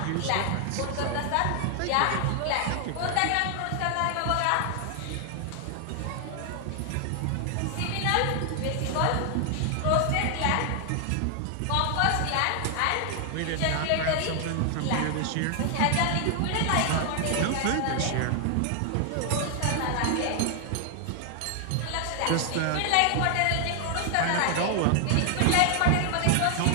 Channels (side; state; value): both; different; correlation 0.00